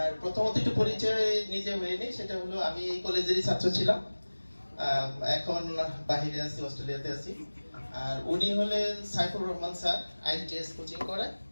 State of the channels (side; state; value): both; inverted; correlation -1.00